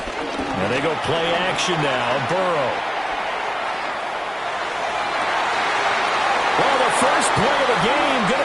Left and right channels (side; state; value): both; identical; correlation 1.00